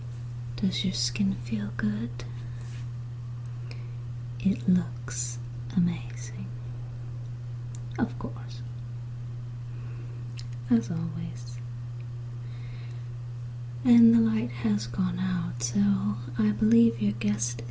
Does your skin feel good? It looks amazing. Of course. As always. And the light has gone out, so I believe your guest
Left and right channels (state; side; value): identical; both; correlation 1.00